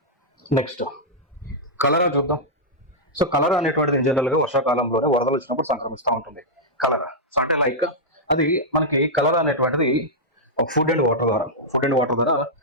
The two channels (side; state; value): both; normal; correlation -0.07